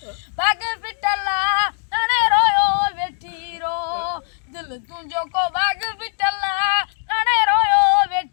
बाग पिटला अड़े रोयो वेठी रो दिल तुंहिंजो को बाग पिटला अड़े रोयो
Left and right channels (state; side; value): silent; right; 65 dB below the other